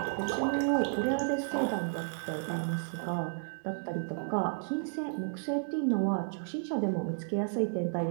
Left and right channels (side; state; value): left; silent; digital silence